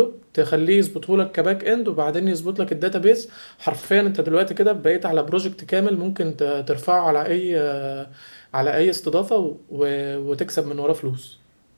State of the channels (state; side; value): inverted; both; correlation -1.00